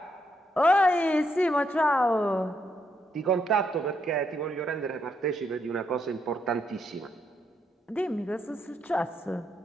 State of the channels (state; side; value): normal; both; correlation 0.77